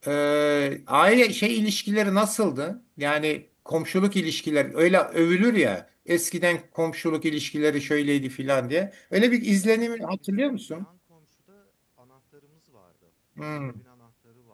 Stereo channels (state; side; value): identical; both; correlation 1.00